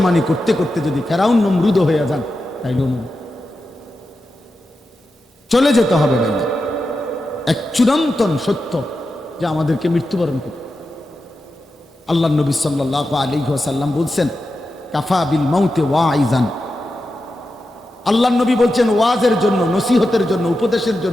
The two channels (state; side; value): normal; both; correlation 0.90